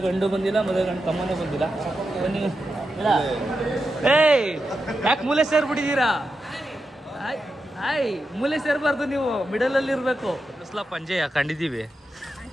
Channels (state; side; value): normal; both; correlation 0.88